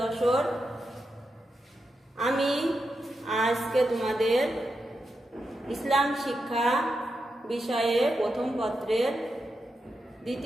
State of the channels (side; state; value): both; normal; correlation 0.87